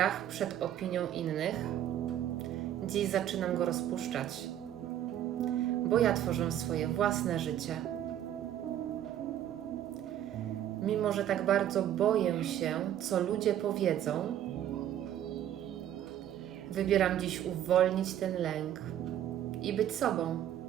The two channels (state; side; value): quieter; left; 11.3 dB